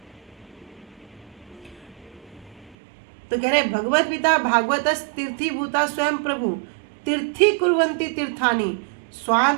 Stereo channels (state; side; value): drops out; left; at 2.8 s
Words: तो कह रहे भगवत पिता भागवत तीर्थी भूता स्वयं प्रभु तीर्थी कुर्वंती तीर्थानी